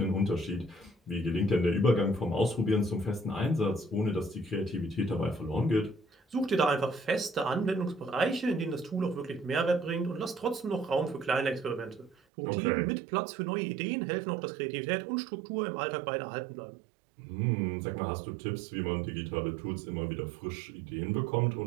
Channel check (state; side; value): drops out; left; at 12.2 s